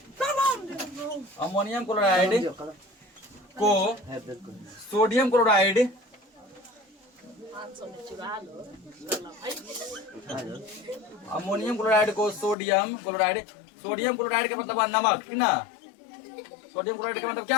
को सोडियम क्लोराइड अमोनियम क्लोराइड को सोडियम क्लोराइड का मतलब नमक, ठीक ना। सोडियम क्लोराइड का मतलब क्या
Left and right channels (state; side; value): drops out; right; at 12.6 s